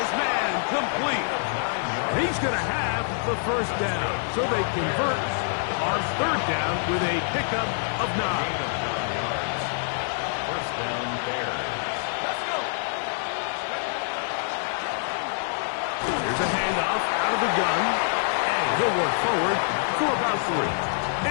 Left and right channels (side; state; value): right; silent; 61 dB below the other